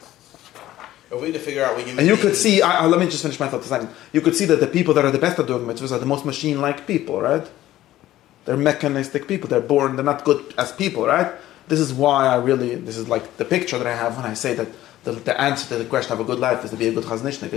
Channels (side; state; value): right; quieter; 14.4 dB